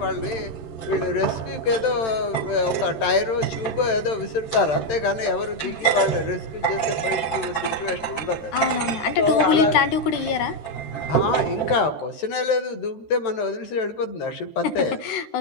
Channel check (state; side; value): late; right; 13 ms